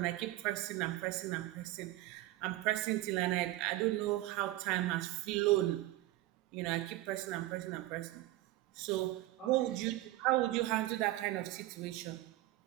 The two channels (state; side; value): quieter; left; 16.7 dB